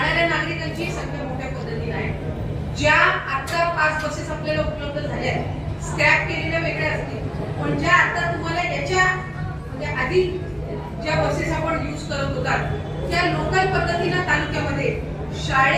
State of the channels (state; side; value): identical; both; correlation 1.00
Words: नागरिकांची संख्या मोठ्या पद्धतीनं आहे। ज्या आता 5 बसेस आपल्याला उपलब्ध झाल्या स्क्रॅप केलेल्या वेगळ्या असतील, पण ज्या आता तुम्हाला याच्या म्हणजे आधी ज्या बसेस आपण यूज करत होतात त्या लोकल पद्धतीनं तालुक्यामध्ये